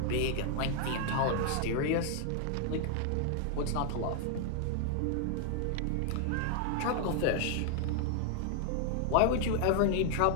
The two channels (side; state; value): both; different; correlation 0.00